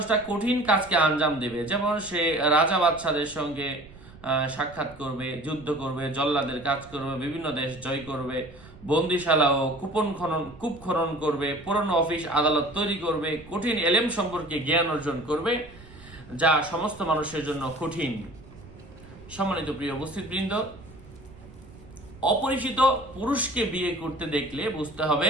কঠিন কাজকে আঞ্জাম দেবে। যেমন সে রাজা বাদশাদের সঙ্গে সাক্ষাৎ করবে, যুদ্ধ করবে, জল্লাদের কাজ করবে, বিভিন্ন দেশ জয় করবে, বন্দিশালা ও কূপ খনন করবে, পুরনো অফিস আদালত তৈরি করবে, কঠিন এলেম সম্পর্কে জ্ঞান অর্জন করবে যা সমস্ত মানুষের জন্য কঠিন। সম্মানিত প্রিয় উপস্থিতবৃন্দ, অপরিচিত পুরুষকে বিয়ে করতে দেখলে বুঝতে হবে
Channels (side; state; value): right; noise; rumble, 20 dB below the sound